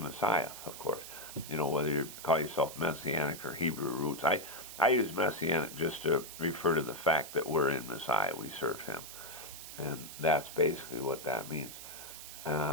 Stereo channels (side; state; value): right; noise; hiss, 12 dB below the sound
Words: of course. Whether you call yourself Messianic or Hebrew roots. I use Messianic just to refer to the fact that we're in Messiah, we serve him. And that's basically what that means.